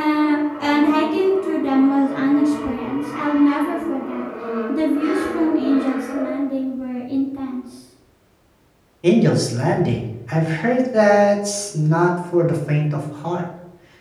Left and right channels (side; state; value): both; identical; correlation 1.00